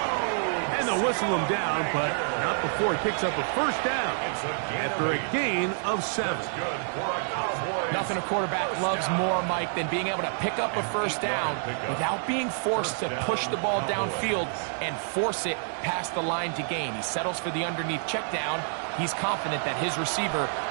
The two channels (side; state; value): left; silent; 59 dB below the other